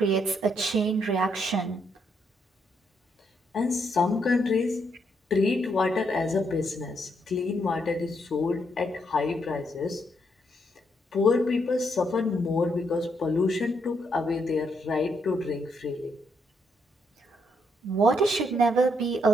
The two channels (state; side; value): normal; both; correlation 0.76